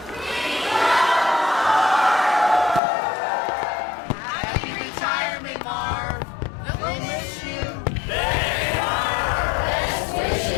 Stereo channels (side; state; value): right; drops out; at 2.8 s